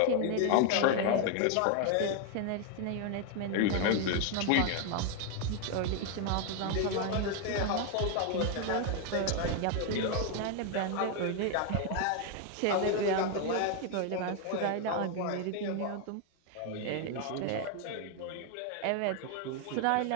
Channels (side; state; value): both; different; correlation 0.00